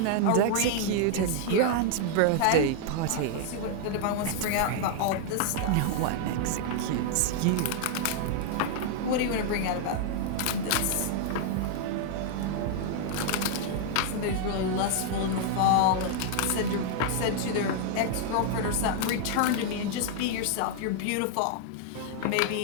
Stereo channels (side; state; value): both; different; correlation 0.00